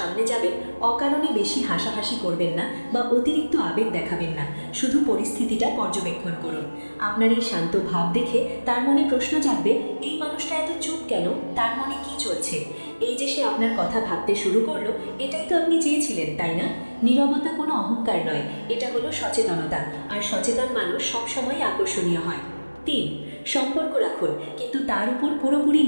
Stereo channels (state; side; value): inverted; both; correlation -1.00